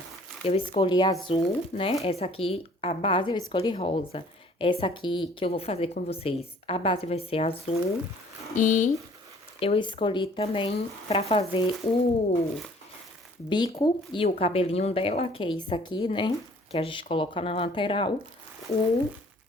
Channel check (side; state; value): both; normal; correlation 0.55